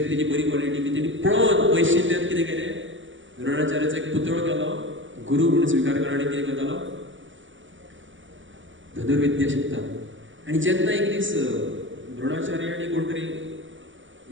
तेजी बरी क्वॉलिटी की तेणी पळोवन पयसुल्ल्यान कितें केलें द्रोणाचार्याचो एक पुतळो केलो गुरू म्हणून स्विकार केलो आनी कितें करतालो धनुर्विद्या शिकता आनी जेन्ना एक दीस द्रोणाचार्य आनी कोण तरी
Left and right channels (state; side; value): late; left; 0.56 ms